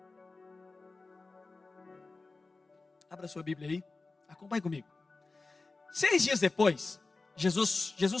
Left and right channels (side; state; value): right; quieter; 3.7 dB